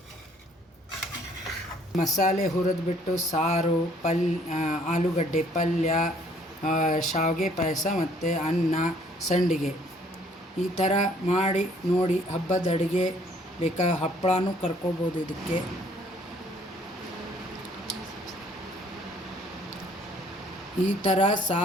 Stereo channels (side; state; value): both; normal; correlation 0.61